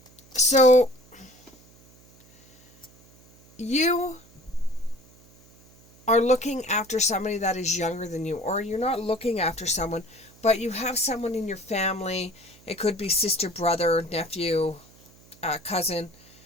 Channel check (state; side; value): noise; right; hum, 27 dB below the sound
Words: So, you are looking after somebody that is younger than you, or you're not looking after someone, but you have someone in your family. It could be sister, brother, nephew, cousin,